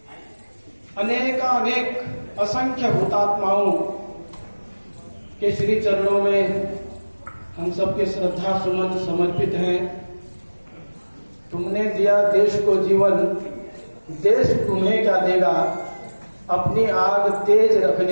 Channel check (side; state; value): both; inverted; correlation -1.00